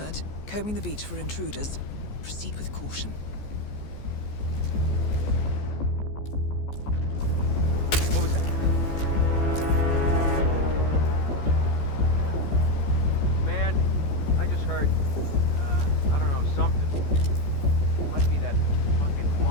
combing the beach for intruders. Proceed with caution. What was that? Man, I just heard, I don't know, something. Might be that fucking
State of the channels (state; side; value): late; right; 14 ms